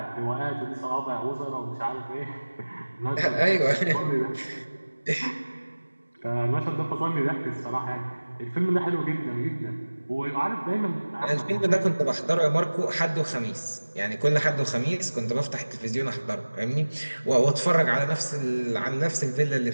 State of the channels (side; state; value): both; inverted; correlation -1.00